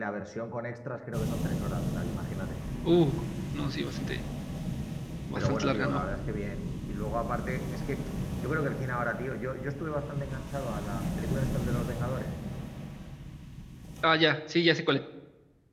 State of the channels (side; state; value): both; identical; correlation 1.00